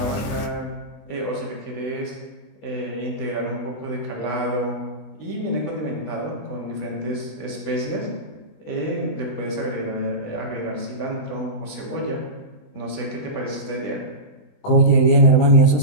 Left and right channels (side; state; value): right; late; 20 ms